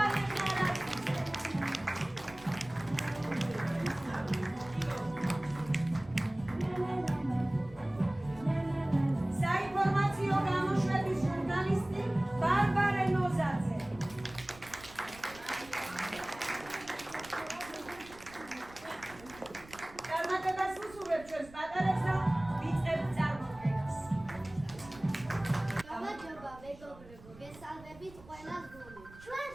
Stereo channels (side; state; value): right; noise; rumble, 20 dB below the sound